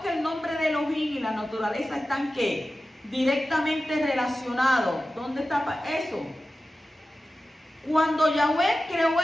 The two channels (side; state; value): both; normal; correlation 0.94